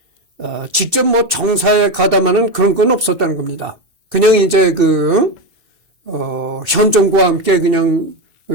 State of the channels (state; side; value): late; left; 2.7 ms